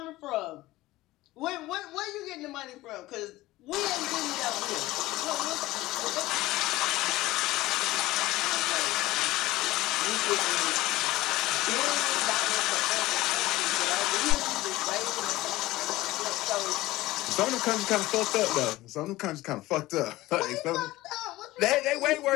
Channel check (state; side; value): quieter; right; 17.8 dB